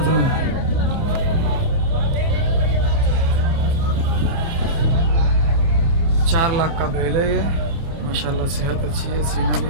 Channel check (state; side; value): late; left; 30 ms